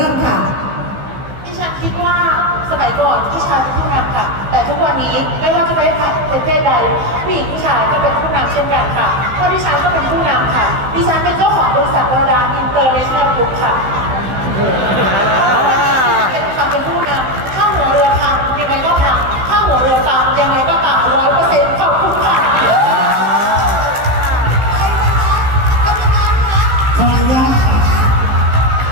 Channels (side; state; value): left; late; 15 ms